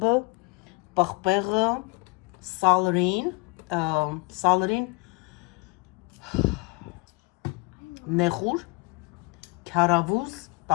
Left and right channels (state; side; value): quieter; right; 27.8 dB